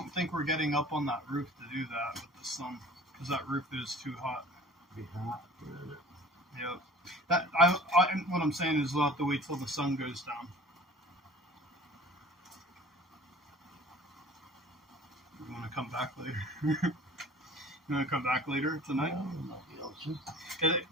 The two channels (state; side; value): normal; both; correlation 0.46